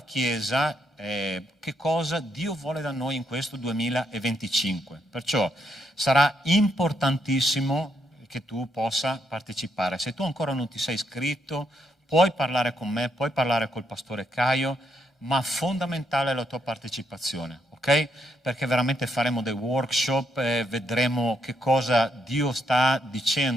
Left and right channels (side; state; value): both; normal; correlation 0.77